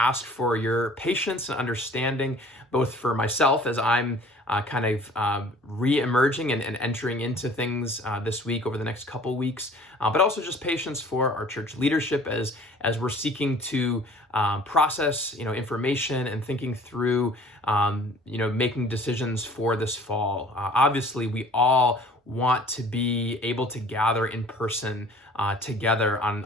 for your patience and understanding, both for myself as I'm kind of re-emerging and entering into things this week over the next couple weeks, but also just patience for our church leadership as we're seeking to process information and thinking through making decisions for this fall. Obviously, we all want to be able to gather in person together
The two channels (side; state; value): both; normal; correlation 0.50